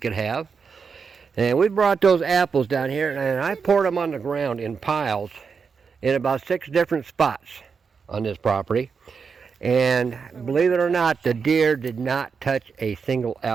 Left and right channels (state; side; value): quieter; left; 5.7 dB